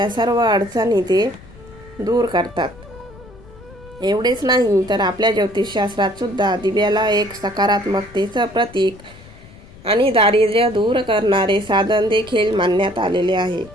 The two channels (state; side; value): noise; left; rumble, 21 dB below the sound